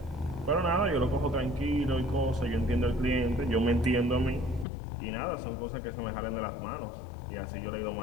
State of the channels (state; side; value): drops out; right; at 4.7 s